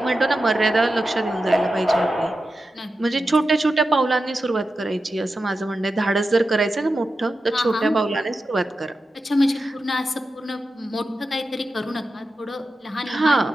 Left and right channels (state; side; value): normal; both; correlation 0.91